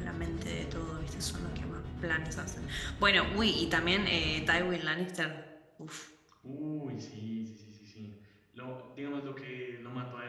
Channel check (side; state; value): both; identical; correlation 1.00